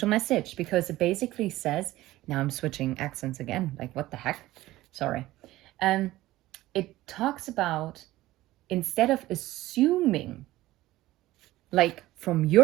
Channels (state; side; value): quieter; left; 16.6 dB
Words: message because it basically says, now I'm switching accents again. Like, what the heck? Sorry. It talks about, instead of assuming, like from